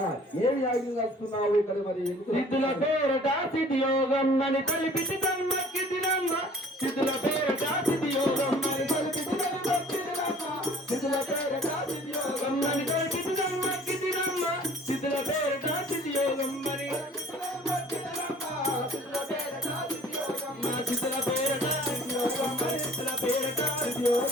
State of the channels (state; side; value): normal; both; correlation 0.51